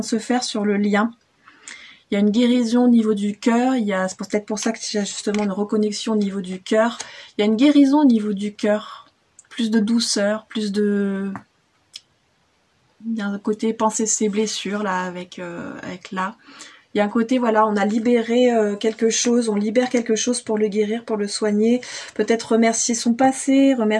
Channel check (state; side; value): identical; both; correlation 1.00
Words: se faire sur le lien. Il y a une guérison au niveau du cœur, c'est peut-être pour ça qu'il y a justement une reconnexion au niveau du cœur. Il y a une guérison au niveau du cœur, plus de douceur, plus de... Il y a un côté penser ses blessures, là, avec là. Il y a un côté, voilà, on a libéré quelque chose, on libère quelque chose pour le guérir, pour le soigner. Peut-être remercier son passé,